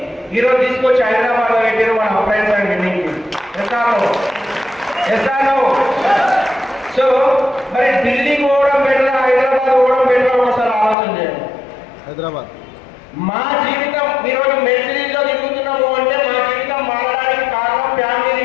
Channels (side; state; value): right; drops out; at 11.0 s